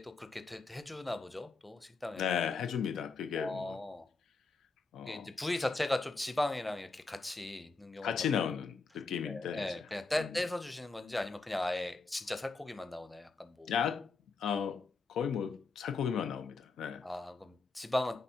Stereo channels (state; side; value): quieter; right; 4.1 dB